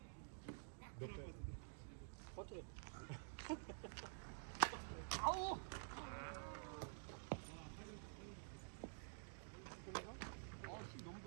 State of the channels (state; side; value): silent; left; digital silence